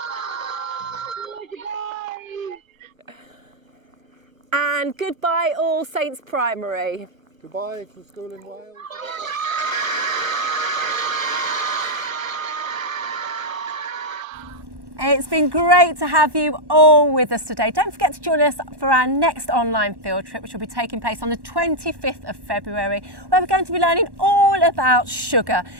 And goodbye, All Saints Primary. Goodbye to school in Wales. It's been great to have you all with us today. Don't forget to join us for our next online field trip, which will be taking place on the 25th of February, where we're going to be learning all about sugar.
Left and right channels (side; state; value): left; late; 1.1 ms